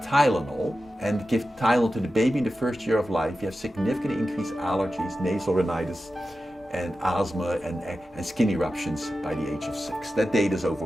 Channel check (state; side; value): normal; both; correlation 0.92